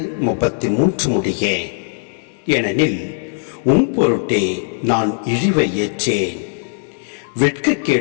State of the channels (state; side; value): silent; right; digital silence